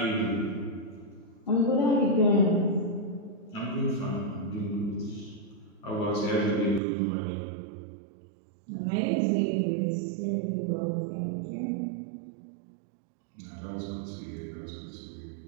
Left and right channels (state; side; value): drops out; left; at 6.8 s